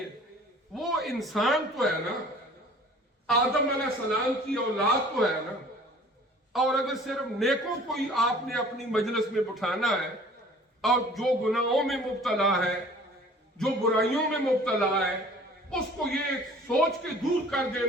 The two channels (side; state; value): both; normal; correlation 0.49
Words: وہ انسان تو ہے نا، آدم علیہ السلام کی اولاد تو ہے نا، اور اگر صرف نیکوں کو ہی آپ نے اپنی مجلس میں بٹھانا ہے اور جو گناہوں میں مبتلا ہے، جو برائیوں میں مبتلا ہے، اس کو یہ سوچ کے دور کر